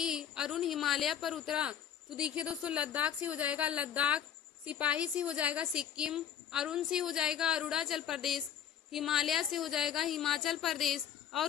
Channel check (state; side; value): quieter; right; 9.1 dB